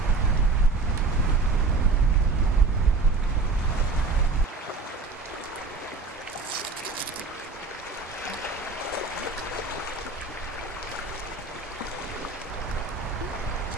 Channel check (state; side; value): quieter; left; 3.9 dB